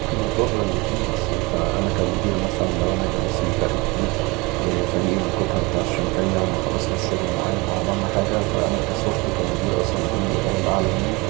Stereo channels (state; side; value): quieter; left; 25.1 dB